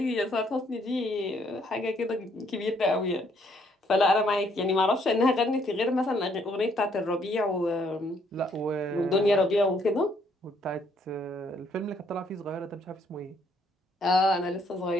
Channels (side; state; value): both; normal; correlation 0.68